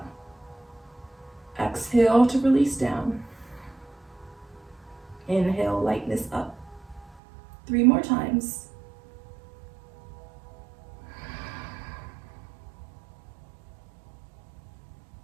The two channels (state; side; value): drops out; left; at 7.2 s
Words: Exhale to release down. Inhale, lightness up. 3 more times.